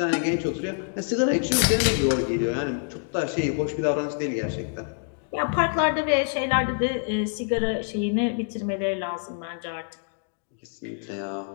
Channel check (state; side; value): silent; right; 59 dB below the other